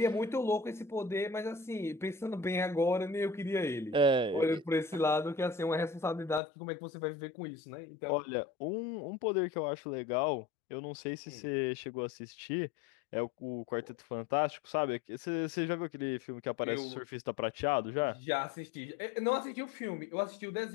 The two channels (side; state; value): right; drops out; at 6.4 s